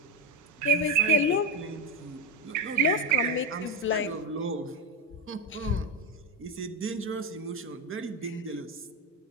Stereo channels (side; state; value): both; normal; correlation 0.12